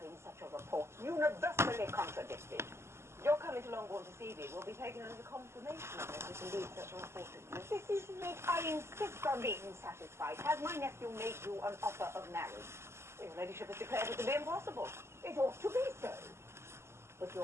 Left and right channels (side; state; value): left; late; 0.13 ms